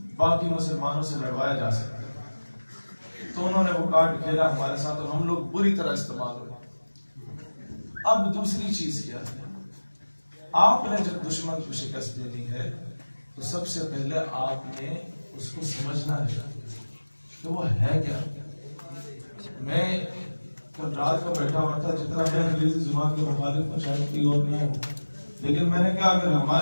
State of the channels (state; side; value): inverted; both; correlation -1.00